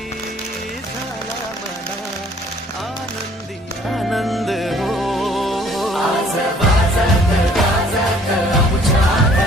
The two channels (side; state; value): both; normal; correlation 0.58